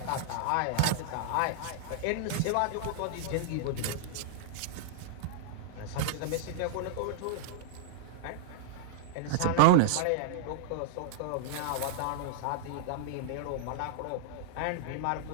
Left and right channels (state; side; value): different; both; correlation -0.01